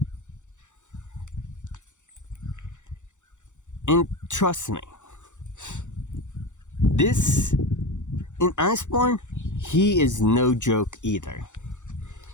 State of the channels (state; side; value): late; right; 0.85 ms